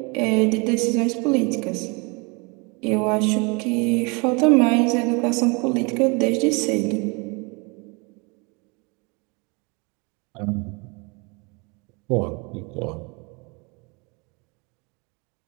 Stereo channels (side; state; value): left; quieter; 30.1 dB